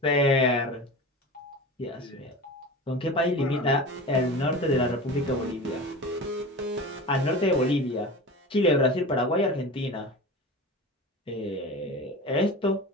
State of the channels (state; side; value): normal; both; correlation 0.31